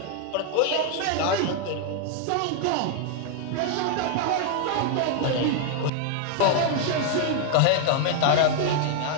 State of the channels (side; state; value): both; different; correlation 0.00